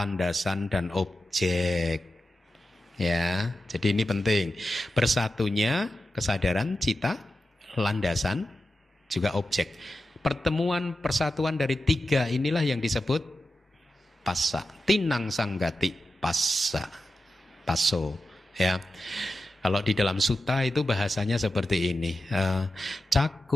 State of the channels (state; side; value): normal; both; correlation 0.92